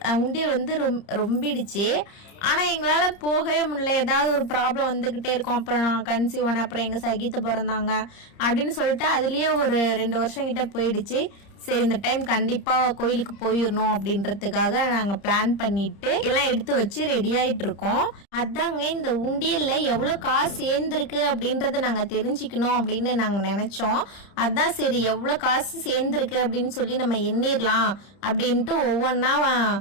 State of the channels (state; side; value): late; right; 30 ms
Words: உண்டியல் வந்து ரொம்பிடுச்சு. ஆனால் எங்களால் போகவே முடியல. ஏதாவது ஒரு ப்ராப்ளம் வந்துக்கிட்டே இருக்கும். அப்புறம் நான் கன்சீவ் ஆனேன், அப்புறம் எங்கள் சகித்து பிறந்தாங்க அப்படின்னு சொல்லிட்டு அதுலேயே ஒரு 2 வருஷம் கிட்ட போயிடுச்சு. சரி, இந்த டைம் கண்டிப்பாக கோயிலுக்கு போயிடணும் அப்படின்றதுக்காக நாங்கள் பிளான் பண்ணிட்டு எல்லாம் எடுத்து வச்சு ரெடி ஆகிட்டு இருக்கோம். அதாங்க இந்த உண்டியலில் எவ்வளோ காசு சேர்ந்துருக்கு அப்படின்றத நாங்கள் தெரிஞ்சுக்கணும் அப்படின்னு நாங்கள் நினச்சோம். அதான் சரி எவ்வளோ காசு சேர்ந்துருக்கு அப்படின்னு சொல்லி நம்ம எண்ணிடலாம் அப்படின்ட்டு ஒவ்வொன்றா